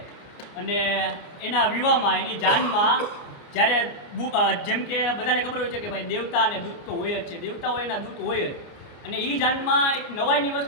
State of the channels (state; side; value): late; right; 29 ms